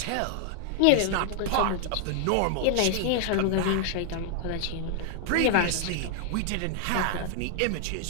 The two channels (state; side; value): different; both; correlation 0.00